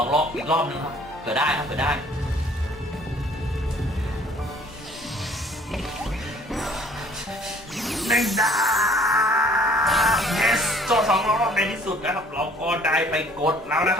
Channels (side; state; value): both; normal; correlation 0.56